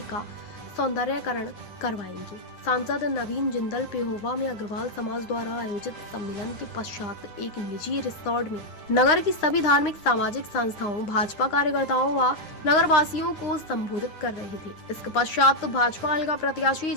का सौंदर्यकरण करवाएंगे। सांसद नवीन जिंदल पेहोवा में अग्रवाल समाज द्वारा आयोजित सम्मेलन के पश्चात एक निजी रिसोर्ट में नगर की सभी धार्मिक सामाजिक संस्थाओं, भाजपा कार्यकर्ताओं व नगर वासियों को संबोधित कर रहे थे। इसके पश्चात भाजपा हल्का प्रत्याशी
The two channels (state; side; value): late; right; 9.7 ms